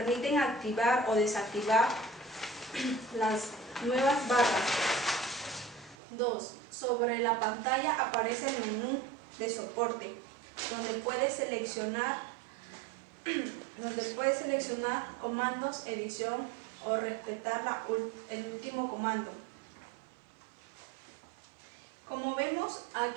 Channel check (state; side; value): drops out; left; at 6.0 s